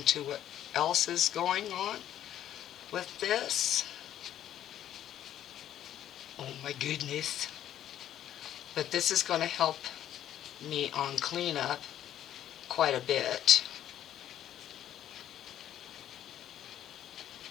to what else is going on with this. Oh my goodness. But this is going to help me on cleanup quite a bit.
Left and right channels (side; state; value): right; quieter; 11.3 dB